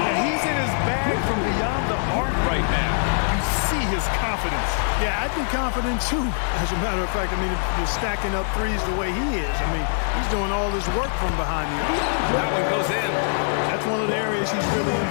he's in his bag from beyond the arc right now. You see his confidence. Yeah, I'd be confident too. As a matter of fact, I mean, if you're stacking up threes the way he is, I mean, he's doing all this work from behind the arc. That one goes in. That's one of the areas he's really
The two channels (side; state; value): right; silent; digital silence